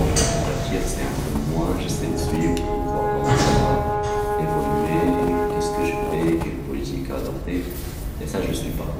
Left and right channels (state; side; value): identical; both; correlation 1.00